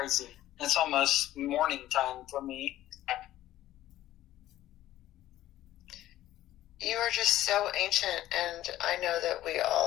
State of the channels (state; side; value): quieter; right; 14.2 dB